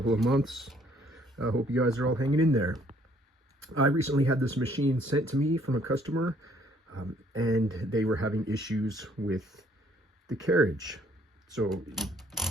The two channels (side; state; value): both; normal; correlation 0.63